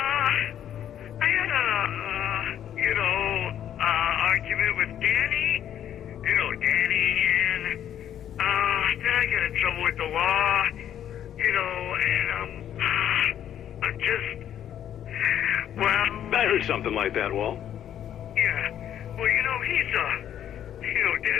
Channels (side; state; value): right; quieter; 10.3 dB